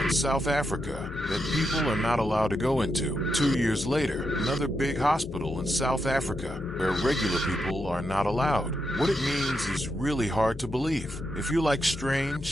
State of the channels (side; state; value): both; normal; correlation 0.84